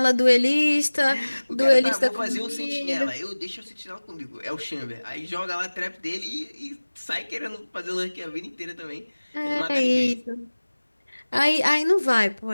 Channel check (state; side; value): inverted; both; correlation -1.00